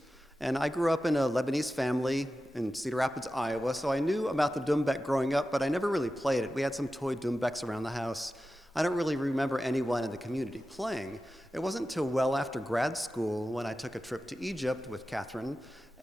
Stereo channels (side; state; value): both; normal; correlation 0.93